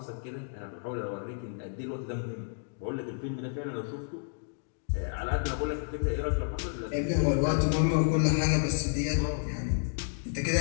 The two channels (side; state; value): right; silent; digital silence